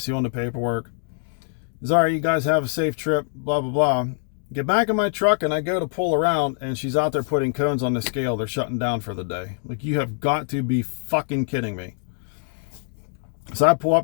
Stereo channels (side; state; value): right; silent; digital silence